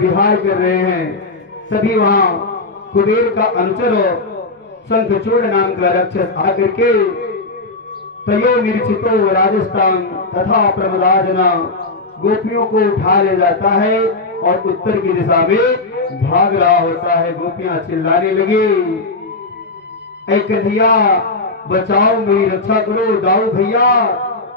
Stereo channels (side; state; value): right; quieter; 3.4 dB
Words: कर रहे हैं। तभी वहां कुबेर का अनुचर शंखचूड़ नाम का राक्षस आकर के तयो निरीक्षितो राजस्थान तथा प्रमदाजना गोपियों को उठा ले जाता है और उत्तर की दिशा में भाग रहा होता है। गोपियां चिल्लाने लगी, ऐ कन्हैया बचाओ, मेरी रक्षा करो। दाऊ भैया